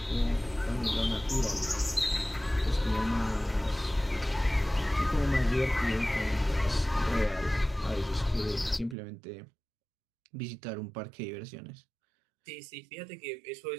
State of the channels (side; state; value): left; drops out; at 9.0 s